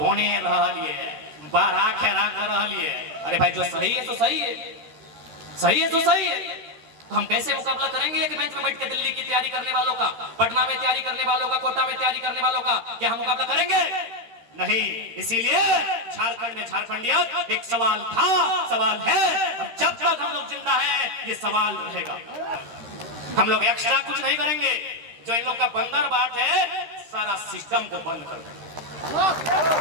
रह लिए, बारह खेरा कर रह लिए। अरे भाई, जो सही है तो सही है, सही है तो सही है। तो हम कैसे मुकाबला करेंगे एक बेंच में बैठ के दिल्ली की तैयारी करने वालों का, पटना में तैयारी करने वालों का, कोटा में तैयारी करने वालों का? क्या हम मुकाबला करेंगे? नहीं। इसीलिए झारखंड में झारखंडियत एक सवाल था, सवाल है, और जब तक हम लोग जिंदा हैं ये सवाल रहेगा। हम लोग एक्स्ट्रा कुछ नहीं करेंगे। जो इन लोग का बंदर बाट है, सारा सिस्टम को बंद कर देंगे,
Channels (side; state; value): left; late; 13 ms